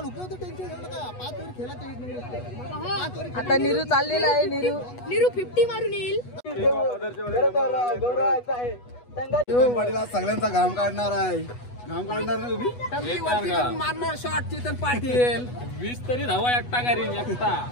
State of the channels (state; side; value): late; right; 8.2 ms